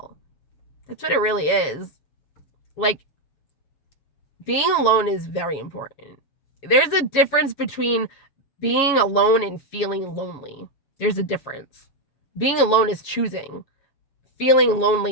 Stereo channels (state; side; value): late; right; 7.3 ms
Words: That's what it really is. Like, being alone is very important. There's a difference between being alone and feeling lonely. There's a difference. Being alone is choosing. Feeling